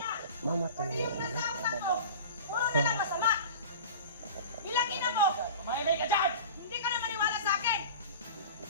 Mama to. Pati yung nasa utak mo, puro na lang masama! Bilangin na mo! Mahimik ka dyan! Hindi ka na maniwala sa akin!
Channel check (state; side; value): inverted; both; correlation -0.36